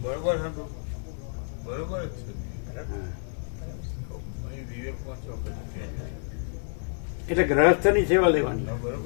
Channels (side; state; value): right; silent; 57 dB below the other